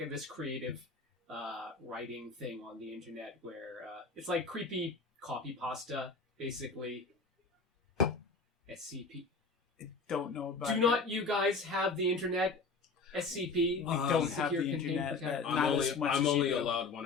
this creative writing thing on the internet where it's like creepy copy pasta, basically. SCP. I don't know about. Do not you guys have the internet? SCP. We don't have the internet. I'm only allowed 1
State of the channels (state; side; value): quieter; right; 4.0 dB